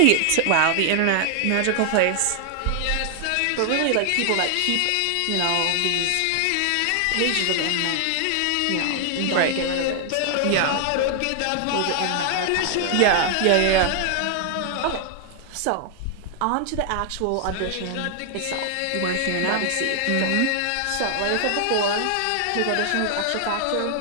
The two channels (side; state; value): both; different; correlation 0.00